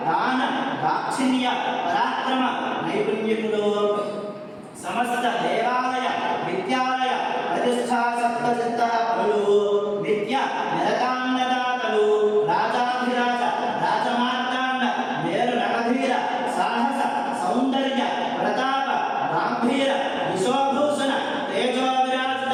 దాన దాక్షిణ్య పరాక్రమ నైపుణ్యులు సమస్త దేవాలయ విద్యాలయ ప్రతిష్టా సప్తచిత్త పరులు విద్య నిరతాన్నదాతలు రాజాధిరాజ రాజమార్తాండ మేరు నగధీర సాహస సౌందర్య ప్రతాప గాంభీర విశ్వభూషణ తేజో విరాజిత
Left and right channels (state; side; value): identical; both; correlation 1.00